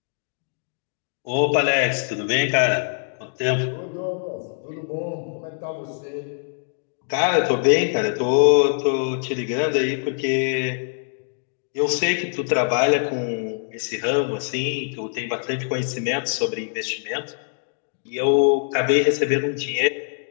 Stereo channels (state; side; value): silent; right; digital silence